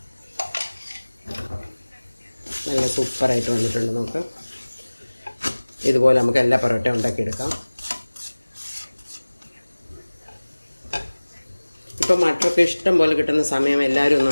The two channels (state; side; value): inverted; both; correlation -1.00